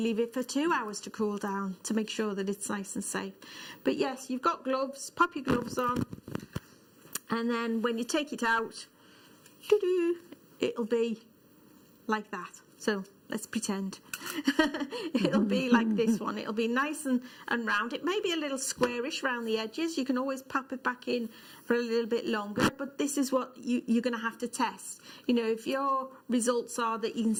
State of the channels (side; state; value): both; identical; correlation 1.00